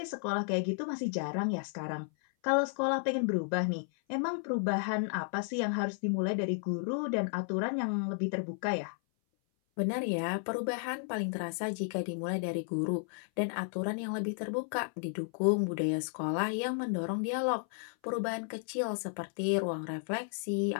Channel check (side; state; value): right; silent; 56 dB below the other